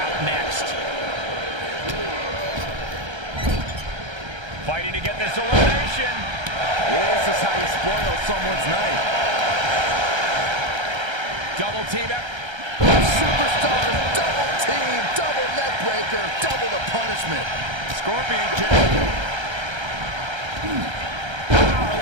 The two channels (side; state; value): left; late; 1.3 ms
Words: next. Fighting to get this elimination. This is how you spoil someone's night. Double team up. Superstars, double team, double neck breaker, double the punishment. Scorpion kick.